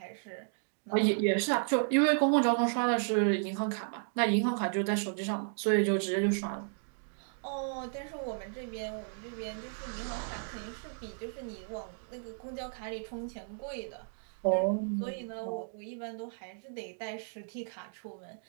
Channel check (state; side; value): silent; left; digital silence